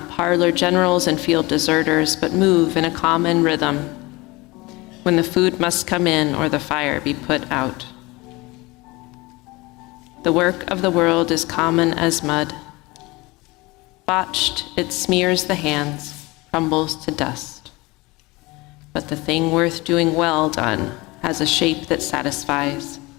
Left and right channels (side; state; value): right; quieter; 22.8 dB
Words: parlor generals and field deserters, but move in a common rhythm when the food must come in or the fire be put out. The work of the world is common as mud. Botched, it smears the hands, crumbles to dust. but the thing worth doing well done has a shape that satisfies,